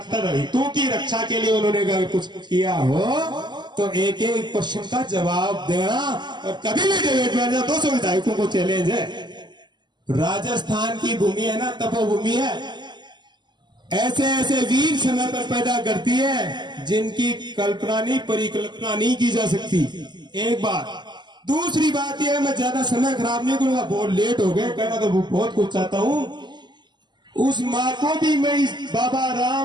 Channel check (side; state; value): left; late; 0.21 ms